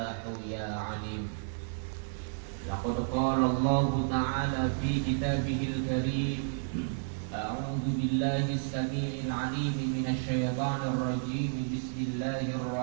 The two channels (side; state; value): left; silent; 57 dB below the other